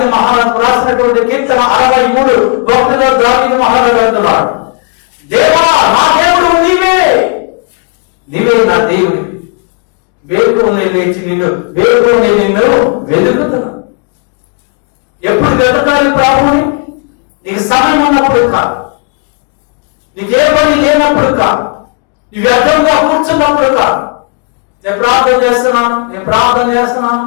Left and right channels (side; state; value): right; quieter; 37.9 dB